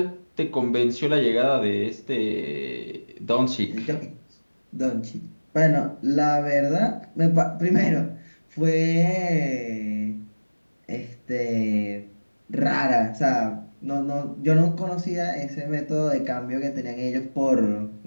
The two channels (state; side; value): inverted; both; correlation -1.00